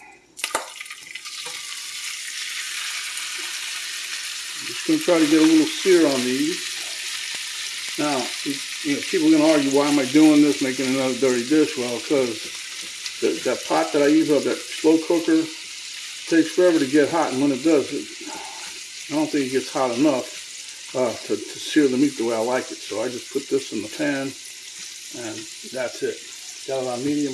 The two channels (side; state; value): both; identical; correlation 1.00